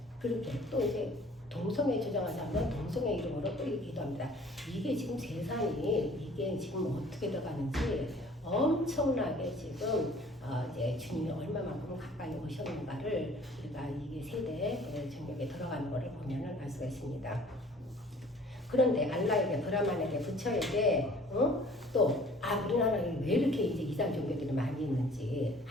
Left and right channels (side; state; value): both; normal; correlation 0.52